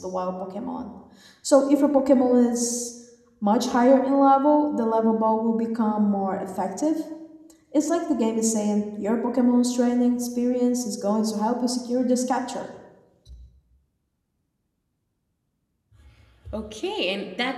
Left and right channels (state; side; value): identical; both; correlation 1.00